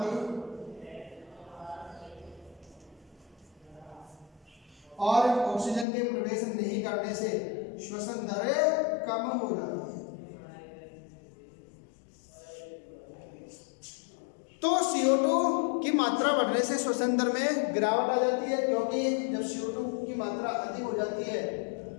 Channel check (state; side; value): drops out; right; at 5.9 s